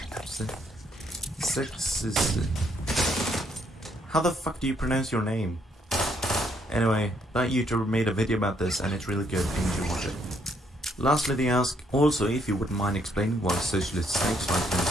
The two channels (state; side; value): normal; both; correlation 0.71